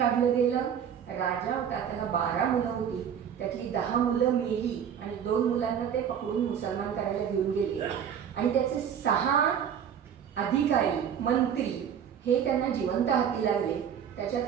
गेलं. राजा होता, त्याला 12 मुलं होती, त्यातली 10 मुलं मेली आणि 2 मुलांना ते पकडून मुसलमान करायला घेऊन गेले आणि त्याचे 6 अधिकारी मंत्री हे त्यांना जिवंत हाती लागले.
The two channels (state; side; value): quieter; left; 8.4 dB